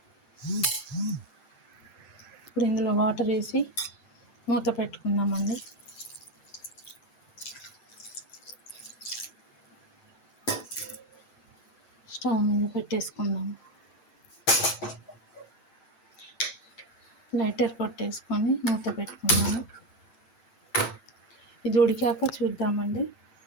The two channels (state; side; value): late; right; 7.8 ms